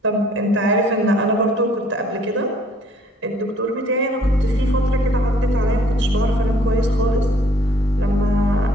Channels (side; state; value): both; normal; correlation 0.59